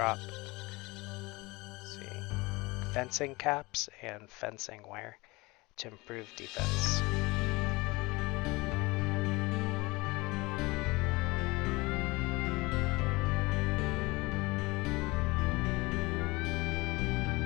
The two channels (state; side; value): quieter; right; 23.4 dB